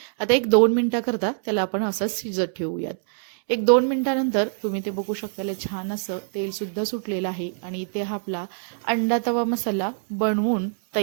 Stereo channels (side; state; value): left; silent; digital silence